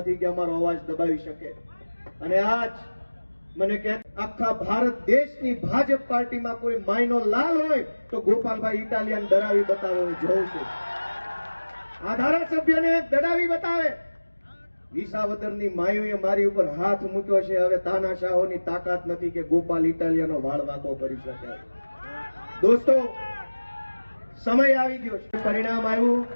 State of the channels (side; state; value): both; inverted; correlation -1.00